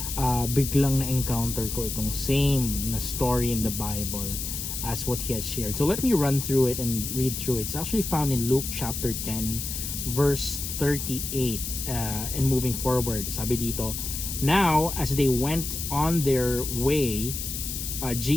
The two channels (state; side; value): noise; left; hiss, 5 dB below the sound